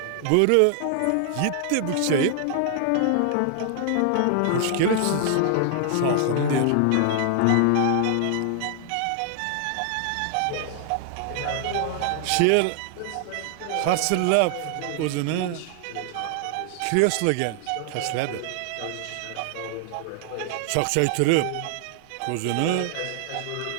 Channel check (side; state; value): both; different; correlation 0.00